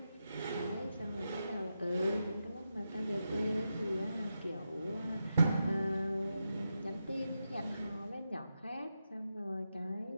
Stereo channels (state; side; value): inverted; both; correlation -0.88